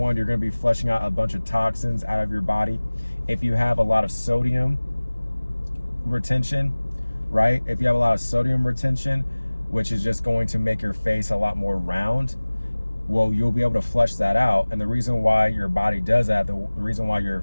you're going to be flushing out a bunch of toxins out of your body. If you have a lot of sodium retention, right? If you have a lot of sodium retention, which is just going to make your face a lot more round, well, you'll be able to flush that out. And the reason why your body does that, the reason why your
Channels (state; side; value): inverted; both; correlation -1.00